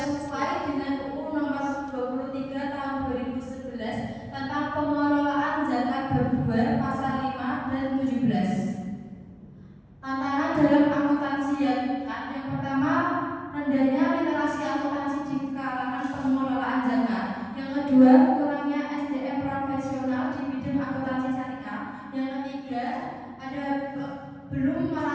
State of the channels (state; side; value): identical; both; correlation 1.00